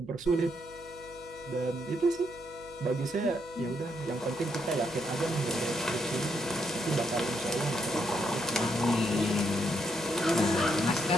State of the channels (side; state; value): right; noise; hum, 22 dB below the sound